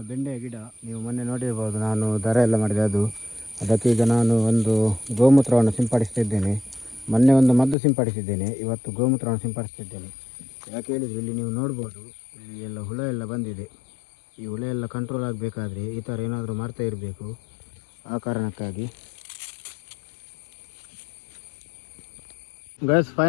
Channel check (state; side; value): drops out; right; at 7.8 s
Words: ಬೆಂಡೆಯ ಗಿಡ. ನೀವು ಮೊನ್ನೆ ನೋಡಿರ್ಬೋದು, ನಾನು ದರ ಎಲ್ಲ ಮಾಡಿದೆ ಅದು. ಅದಕ್ಕೆ ಈಗ ನಾನು ಒಂದು ಗೋಮೂತ್ರವನ್ನು ಸಿಂಪಡಿಸ್ತಿದ್ದೇನೆ. ಮೊನ್ನೆ ಒಂದು ಮದ್ದು ಸಿಂಪಡಿಸಿದ್ದೇನೆ, ಇವತ್ತು ಗೋಮೂತ್ರವನ್ನು ಸಿಂಪಡಿಸ್ತಿದ್ದೇನೆ. ಯಾಕೆ ಹೇಳಿದರೆ ಇಲ್ಲಿ ನೀವು ನೋಡ್ಬೋದು, ಇಲ್ಲಿ ಎಲ್ಲ ಹುಳ ಎಲ್ಲ ಬಂದಿದೆ. ಈ ಹುಳ ಎಲ್ಲ ಕಂಟ್ರೋಲ್ ಆಗಬೇಕಾದ್ರೆ ಈ ಥರ ಏನಾದರೂ ಮಾಡ್ತಾ ಇರಬೇಕು. ಆ ಕಾರಣಕ್ಕಾಗಿ ಗ್ಯಾಸ್